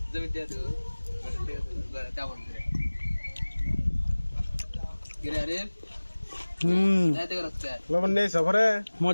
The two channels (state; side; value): inverted; both; correlation -1.00